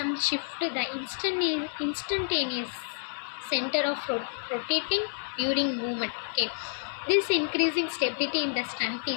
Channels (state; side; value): silent; right; 58 dB below the other